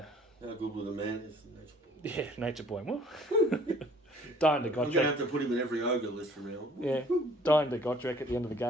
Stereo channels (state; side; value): normal; both; correlation 0.55